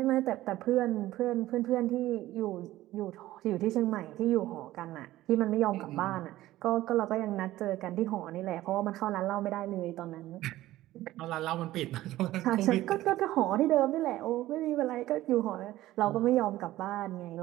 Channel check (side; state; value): left; quieter; 15.7 dB